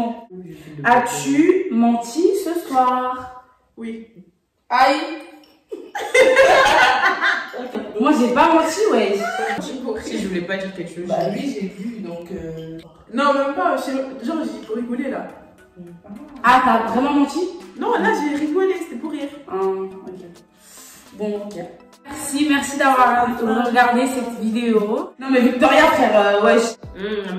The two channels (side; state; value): both; identical; correlation 1.00